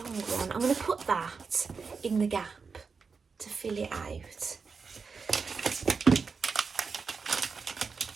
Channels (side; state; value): left; quieter; 5.1 dB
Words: one. I'm going to put that in the gap to fill it out.